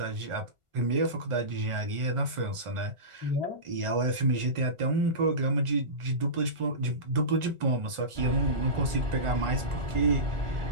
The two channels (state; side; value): late; left; 1.4 ms